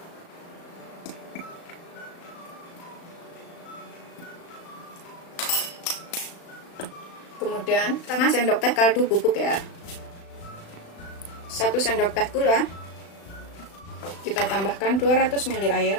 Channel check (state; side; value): late; right; 36 ms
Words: Kemudian setengah sendok teh kaldu bubuk ya. 1 sendok teh gula. Kita tambahkan 200 ml air.